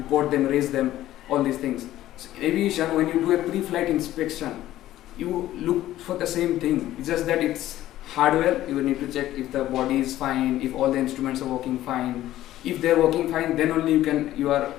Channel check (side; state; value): right; quieter; 14.1 dB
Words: them, raise them, all these things. So in aviation, when you do a pre-flight inspection, you look for the same thing. It's just that it's hardware. You need to check if the body is fine, if all the instruments are working fine. If they're working fine, then only you are